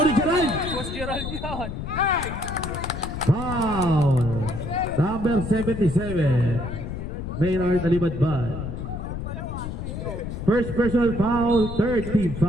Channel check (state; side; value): noise; left; rumble, 6 dB below the sound